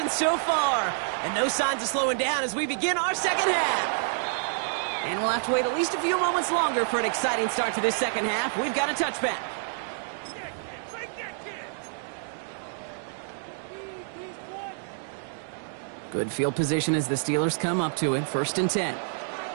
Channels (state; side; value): silent; left; digital silence